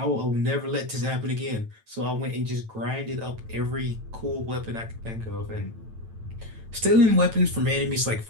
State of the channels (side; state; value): left; late; 9.0 ms